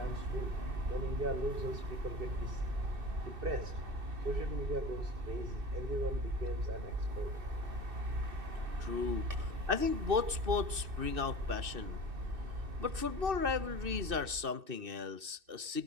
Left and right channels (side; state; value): left; late; 2.6 ms